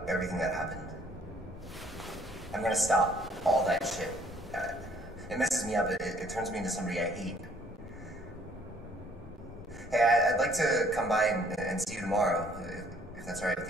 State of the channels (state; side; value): normal; both; correlation 0.61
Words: everything that happened. I'm gonna stop all that shit. It messes me up. It turns me into somebody I hate. Hey, I'd like to come by and see you tomorrow, if that's all right